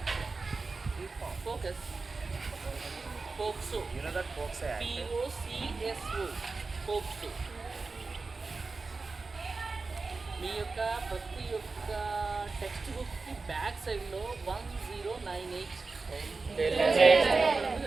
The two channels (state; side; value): quieter; left; 4.0 dB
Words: Focus. Pokso. You know that Pokso Act? POCSO. Pokso. మీ యొక్క ప్రతి ఒక్క text బుక్కి back సైడ్లో 1098